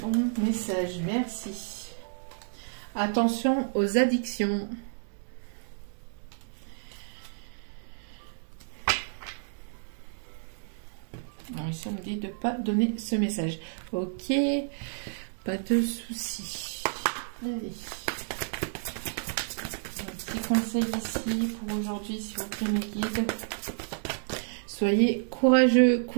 bons messages. Merci. Attention aux addictions. Alors ici, on me dit de ne pas donner ce message. Ok, pas de soucis. Allez. Conseil ici pour aujourd'hui, s'il vous plaît, mes guides. Soyez courageux,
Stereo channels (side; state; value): left; silent; digital silence